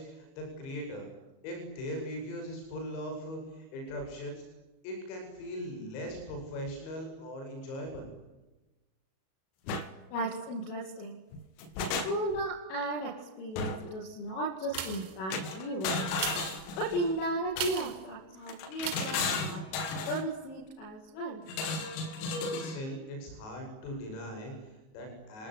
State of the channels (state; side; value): late; right; 37 ms